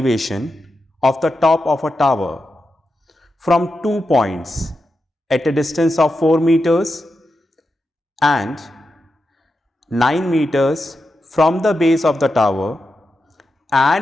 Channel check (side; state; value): both; normal; correlation 0.88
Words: of the top of a tower from 2 points at a distance of 4 meters and 9 meters from the base of the tower